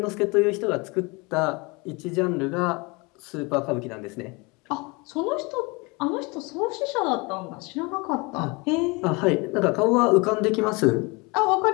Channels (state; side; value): quieter; right; 27.2 dB